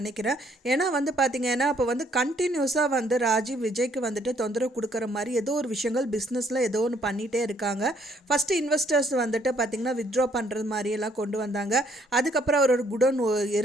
ஏன்னா வந்து பார்த்தீங்கன்னா இப்போ வந்து கண்டினியூஸாக வந்து ராஜி விஜய்க்கு வந்துட்டு தொந்தரவு கொடுக்குற மாதிரி ஏதோ ஒரு விஷயங்கள் பிஸ்னஸில் ஏதோ ஒன்று பண்ணிகிட்டே இருக்காங்க. ஃபஸ்ட்டு இன்வெஸ்டர்ஸ் வந்துட்டு பார்த்திங்கன்னா வித்ட்ரா பண்ணுறது மாதிரியெல்லாம் கொண்டு வந்தாங்க. அதுக்கப்புறம் அவரோட குடோன்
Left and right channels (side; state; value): both; normal; correlation 0.66